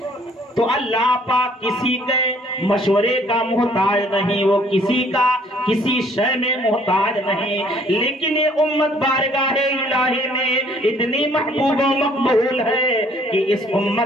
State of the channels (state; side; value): normal; both; correlation 0.60